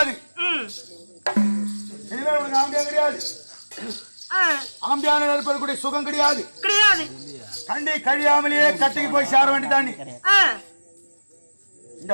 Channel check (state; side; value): inverted; both; correlation -1.00